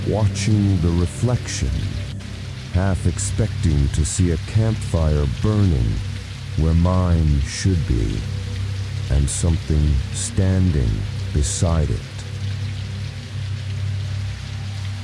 watching the reflection, half expecting to see a campfire burning where mine should be, and something standing beside it.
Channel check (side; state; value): both; identical; correlation 1.00